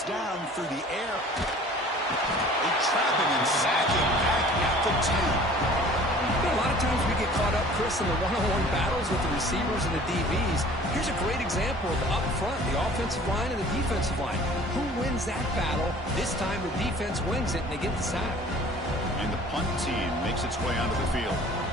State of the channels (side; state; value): both; normal; correlation 0.48